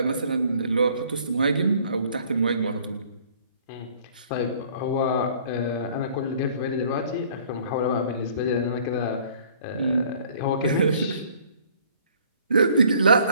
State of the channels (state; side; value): inverted; both; correlation -0.57